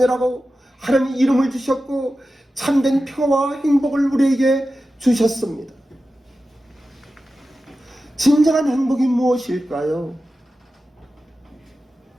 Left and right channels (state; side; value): normal; both; correlation 0.93